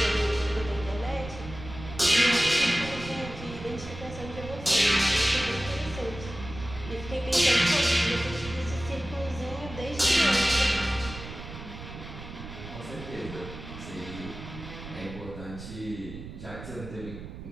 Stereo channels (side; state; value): right; noise; rumble, 12 dB below the sound